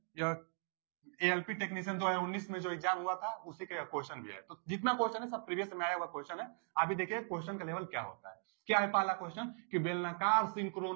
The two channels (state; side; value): silent; left; 52 dB below the other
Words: यह एएलपी टेक्नीशियन 2019 में जो एग्जाम हुआ था उसी का क्वेश्चन भी है। तो जितना क्वेश्चन है सब प्रीवियस में आया हुआ क्वेश्चन है। अभी देखिए क्वेश्चन का लेवल क्या होता है। क्या है पहला क्वेश्चन कि बेलनाकार